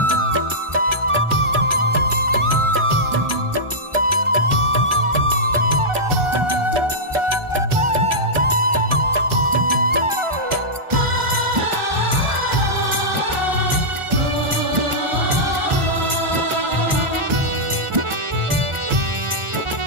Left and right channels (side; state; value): left; late; 1.4 ms